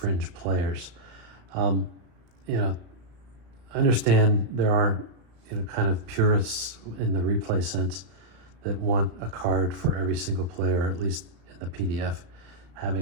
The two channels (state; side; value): late; left; 35 ms